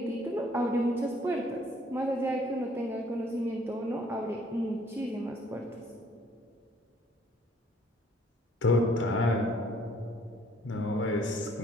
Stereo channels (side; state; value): both; normal; correlation 0.61